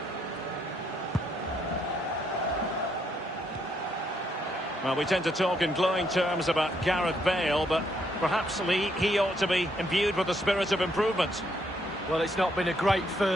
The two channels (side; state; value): both; normal; correlation 0.74